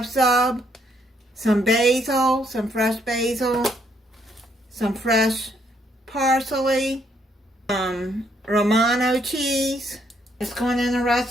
sub. Some basil, some fresh basil. Some fresh parsley. Romano cheese. It's going in a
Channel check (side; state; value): both; normal; correlation 0.71